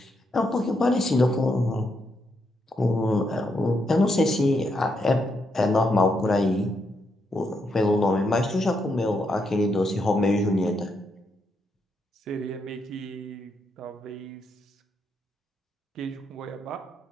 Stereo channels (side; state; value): both; normal; correlation 0.80